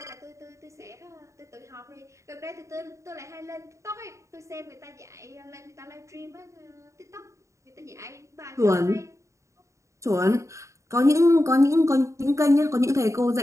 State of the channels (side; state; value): left; late; 0.14 ms